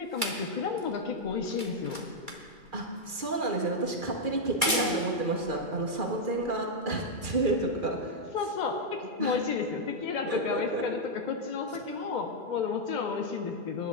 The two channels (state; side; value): late; left; 2.3 ms